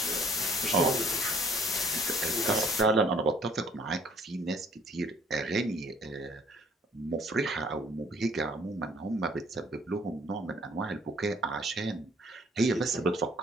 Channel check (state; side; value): normal; both; correlation 0.58